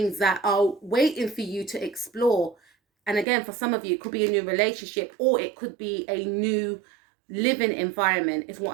that are waiting for you to explore. And again, for some of you, it could be a new relationship, or it could be a new living environment is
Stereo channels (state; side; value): drops out; left; at 3.2 s